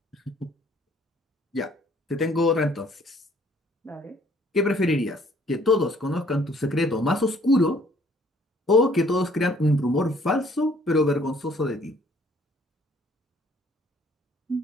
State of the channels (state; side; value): normal; both; correlation 0.61